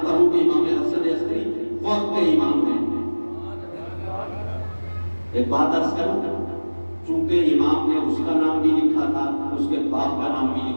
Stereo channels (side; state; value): both; inverted; correlation -1.00